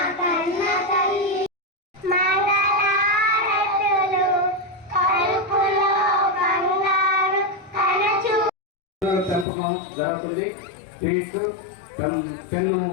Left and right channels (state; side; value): drops out; right; at 9.5 s